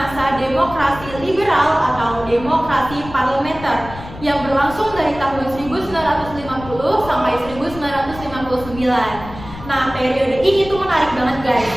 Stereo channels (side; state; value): left; noise; rumble, 14 dB below the sound